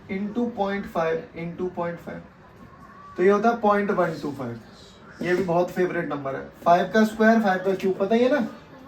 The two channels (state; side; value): identical; both; correlation 1.00